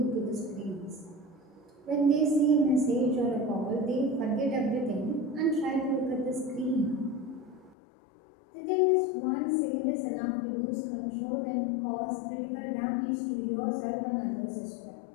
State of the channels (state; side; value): drops out; right; at 7.8 s